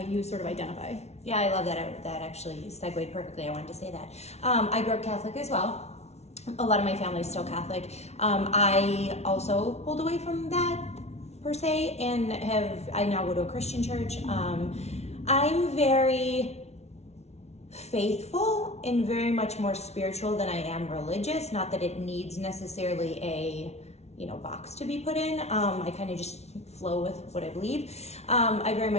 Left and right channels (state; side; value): late; right; 0.31 ms